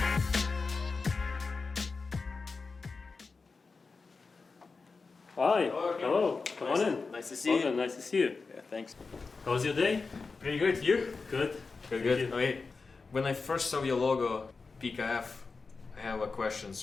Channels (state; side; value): quieter; right; 4.4 dB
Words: Hi. Hello. Hello. Come on in. Nice to see you. Nice to see you. Yeah, thanks. How was your day? Pretty good. You? Good. Good. Thank you. Okay. When I first saw your logo, PKF, I have a